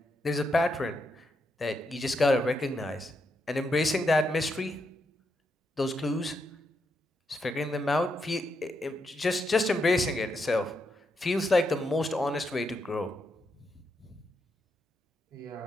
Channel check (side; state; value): both; normal; correlation 0.81